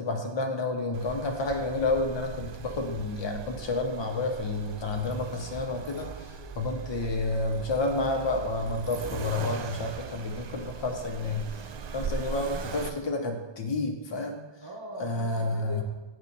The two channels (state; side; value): late; right; 1.2 ms